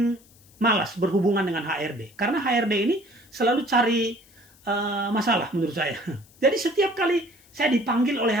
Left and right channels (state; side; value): noise; left; hiss, 28 dB below the sound